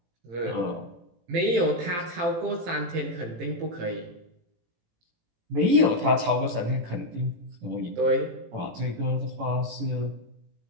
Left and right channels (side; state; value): left; late; 18 ms